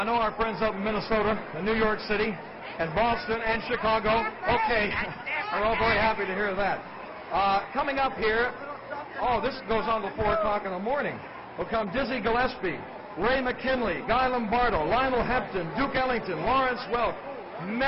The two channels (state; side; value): identical; both; correlation 1.00